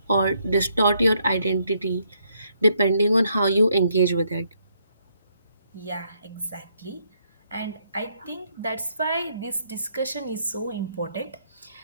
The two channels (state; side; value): inverted; both; correlation -0.73